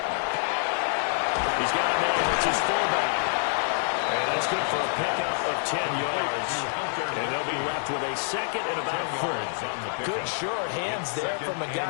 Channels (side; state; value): right; silent; 60 dB below the other